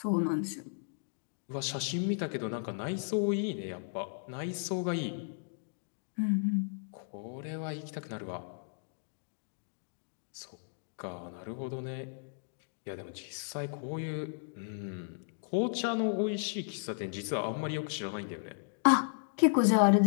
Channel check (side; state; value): right; silent; digital silence